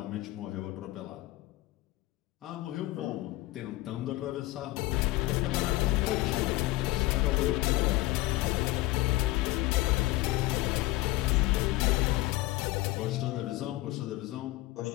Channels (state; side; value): quieter; right; 18.6 dB